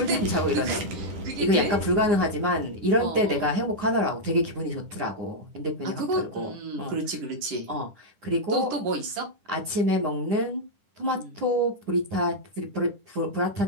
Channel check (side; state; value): left; late; 10 ms